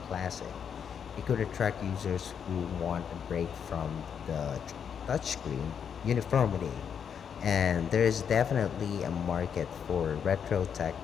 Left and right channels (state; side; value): quieter; right; 7.5 dB